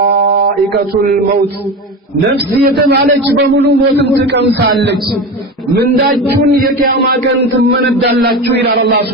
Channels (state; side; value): normal; both; correlation 0.25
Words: الموت نفسي يتمالك بملو موتن تقمصالك من داجون የቂያማ ቀን ትመነዳላችሁ ይላል አላህ